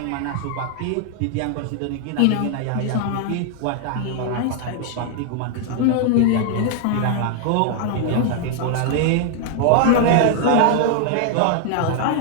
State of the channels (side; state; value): both; different; correlation 0.00